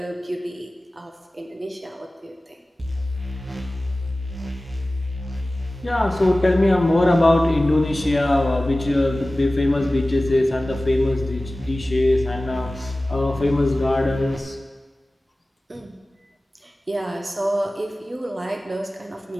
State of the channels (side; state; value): both; normal; correlation 0.97